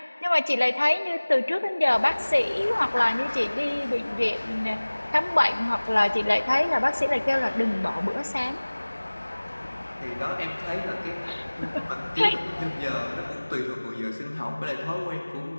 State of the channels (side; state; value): both; inverted; correlation -1.00